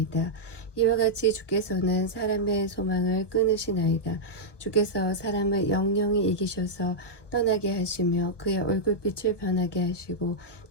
이와 같이 주께서는 사람의 소망을 끊으시나이다. 주께서 사람을 영영히 이기셔서 떠나게 하시며 그의 얼굴빛을 변하게 하시고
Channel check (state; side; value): late; right; 1.2 ms